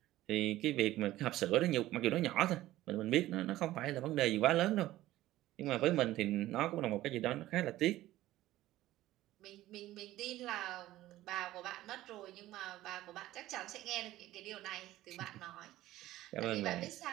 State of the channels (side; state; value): left; quieter; 15.4 dB